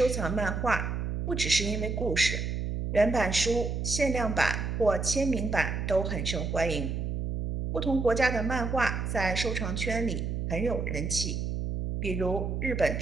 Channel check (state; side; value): noise; right; hum, 2 dB below the sound